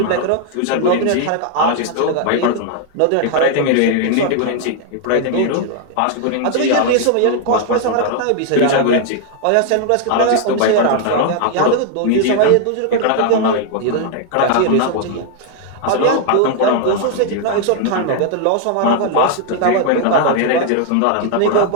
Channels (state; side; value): different; both; correlation 0.00